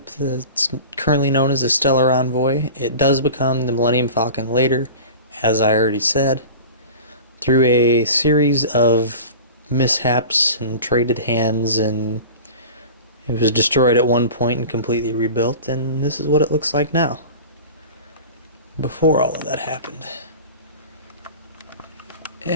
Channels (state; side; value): inverted; both; correlation -0.36